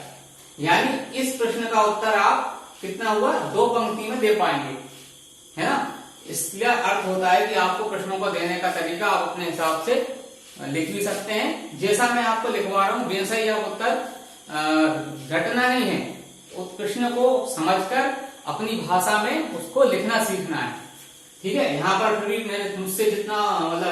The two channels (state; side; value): identical; both; correlation 1.00